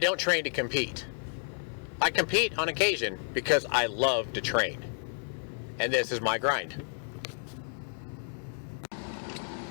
train to compete. I compete on occasion because I love to train. And this is my grind.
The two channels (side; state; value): right; silent; 57 dB below the other